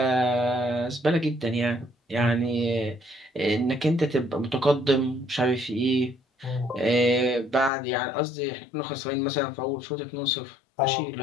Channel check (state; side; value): drops out; right; at 7.7 s